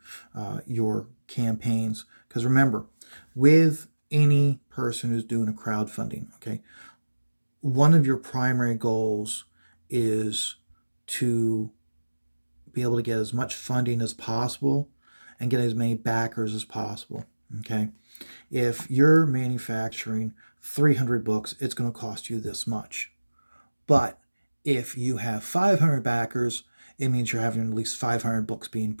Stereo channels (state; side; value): inverted; both; correlation -1.00